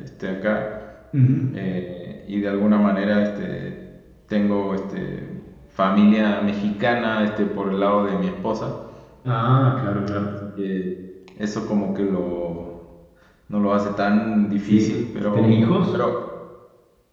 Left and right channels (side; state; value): both; identical; correlation 1.00